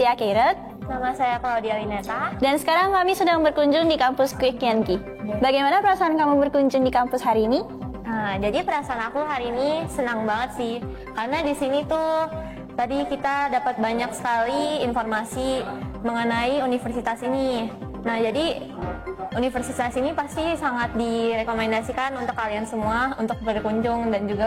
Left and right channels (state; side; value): identical; both; correlation 1.00